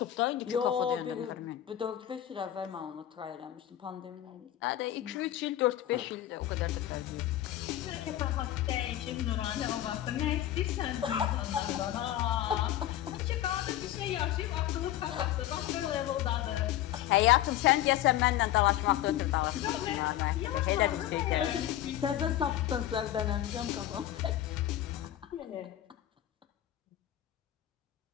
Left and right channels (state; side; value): quieter; right; 12.9 dB